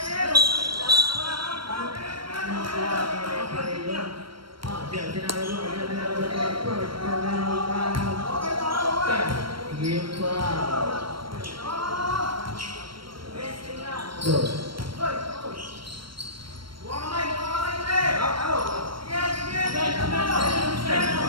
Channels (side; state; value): left; late; 0.73 ms